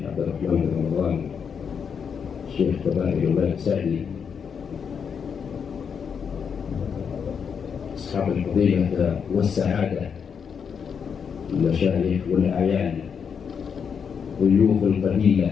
عبد الرحمن بن رمضان، الشيخ كبائر الملك سعدي، أصحاب الفضيلة والسعادة، المشايخ والأعيان، ضيوف القبيلة،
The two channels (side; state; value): right; quieter; 6.8 dB